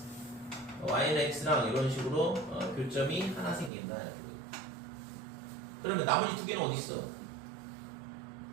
y는 x랑 이런 식으로 교점이 하나 생긴다. 이렇게. 그러면 나머지 두 개는 어디 있어?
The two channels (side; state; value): left; drops out; at 3.7 s